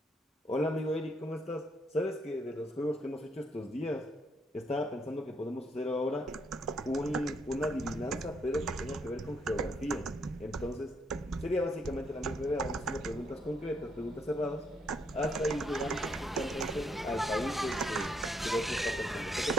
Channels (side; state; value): both; normal; correlation 0.73